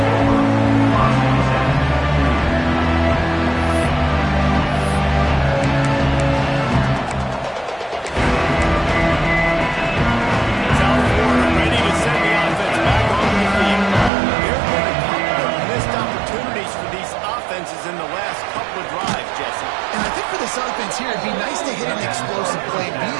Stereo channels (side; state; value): left; drops out; at 14.1 s